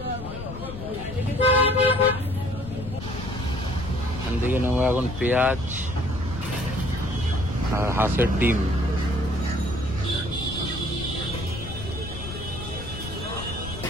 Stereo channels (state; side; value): noise; left; rumble, 10 dB below the sound